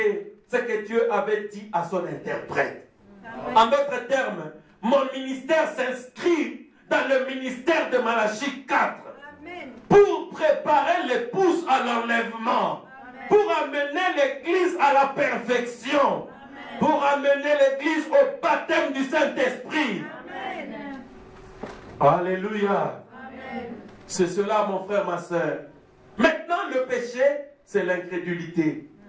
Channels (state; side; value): identical; both; correlation 1.00